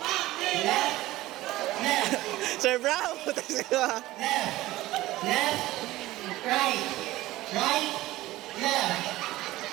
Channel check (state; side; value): quieter; left; 17.1 dB